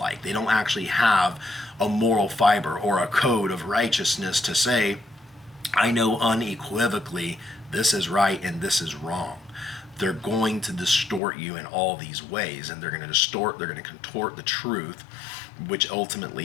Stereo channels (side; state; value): right; drops out; at 11.2 s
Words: They don't actually have a moral fiber or a code of righteousness to say, I know unequivocally this is right and this is wrong. They're going to distort you in all these ways, and they're going to contort the truth, which